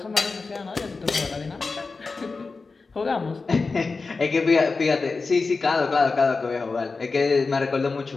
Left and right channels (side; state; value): right; quieter; 4.1 dB